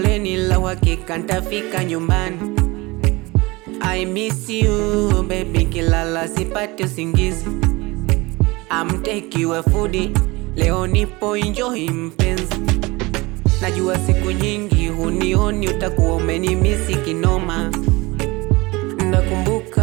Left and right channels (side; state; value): left; quieter; 23.1 dB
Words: la uhakika nitafika nyumbani. I miss you baby, kilala sipati usingizi. I'm take you a foodie, leo nipo enjoy mpenzi. Najua siku nyingi hunioni, utakuwa umenimisi kinoma.